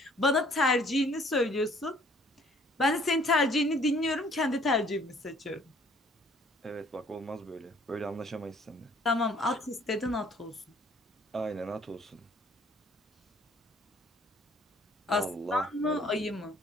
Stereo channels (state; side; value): normal; both; correlation 0.58